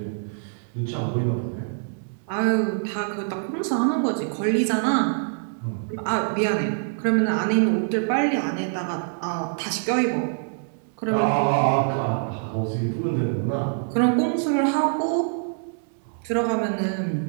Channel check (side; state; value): left; silent; digital silence